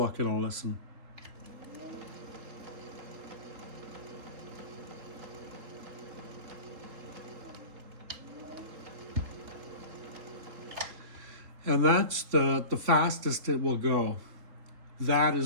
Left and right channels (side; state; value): left; late; 3.8 ms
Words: and I'll listen. And that's the fastest it will go. That